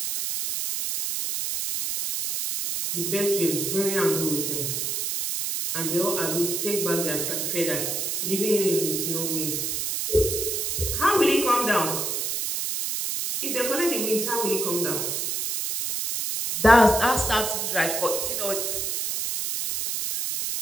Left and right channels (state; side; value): noise; right; hiss, 1 dB below the sound